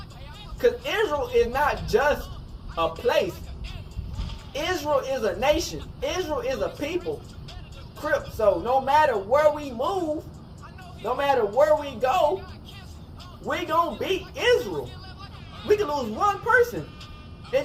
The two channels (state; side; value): identical; both; correlation 1.00